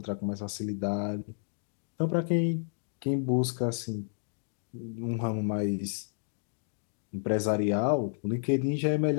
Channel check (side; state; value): right; silent; digital silence